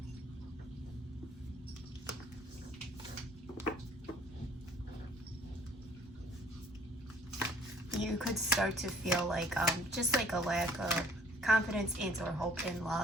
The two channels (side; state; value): both; normal; correlation 0.57